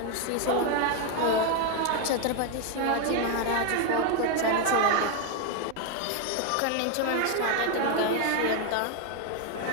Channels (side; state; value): both; different; correlation 0.01